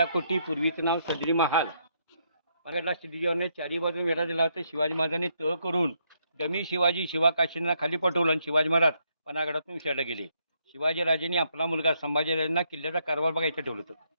कोटी, पूर्वीचं नाव सदरी महाल. परागडला शिवाजीने चारी बाजून वेढा दिला होता. शिवाजी महाराजांनी तह करून दमी शिवाजी शिवाकाशींना खाली पटवलं आणि शिवाजी महाराज पनागडातून विसरले गेले. शिवाजी राजांनी आपला मुलगा संभाजीराजांना किल्ल्याचा कारभार बघायचं ठेवलं होतं.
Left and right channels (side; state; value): both; inverted; correlation -0.75